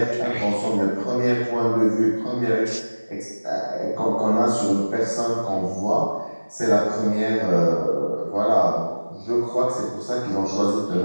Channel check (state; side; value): inverted; both; correlation -1.00